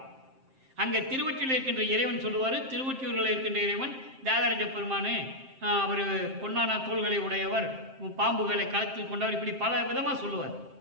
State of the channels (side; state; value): left; late; 7.6 ms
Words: அங்கே திருவொற்றியில் இருக்கின்ற இறைவன் சொல்லுவார். திருவொற்றியூரில் இருக்கின்ற இறைவன் தியாகராஜ பெருமானு, அவர் பொன்னான தோள்களை உடையவர், பாம்புகளை களத்தில் கொண்டவர், இப்படி பல விதமாக சொல்லுவார்.